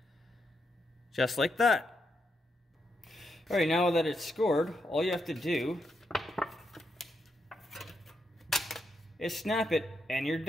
Just like that. Alright, now that it's scored, all you have to do is snap it and you're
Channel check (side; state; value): both; normal; correlation 0.82